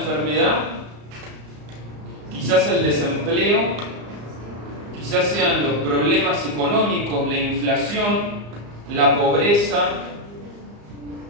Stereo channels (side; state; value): left; late; 34 ms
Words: quizás el desempleo, quizás sean los problemas económicos, la inflación, la pobreza,